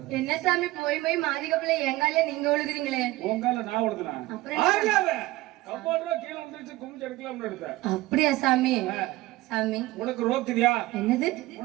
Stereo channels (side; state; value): left; quieter; 18.4 dB